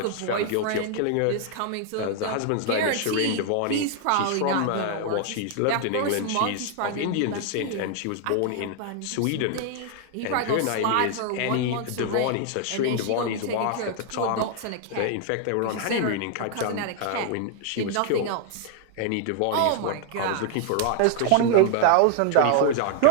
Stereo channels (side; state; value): both; different; correlation 0.00